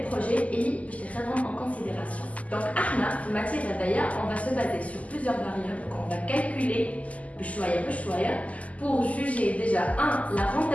projets et elle en considération. Donc, en matière d'ailleurs, on va se baser sur plusieurs variables qu'on va calculer pour juger déjà la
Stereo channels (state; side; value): late; right; 0.071 ms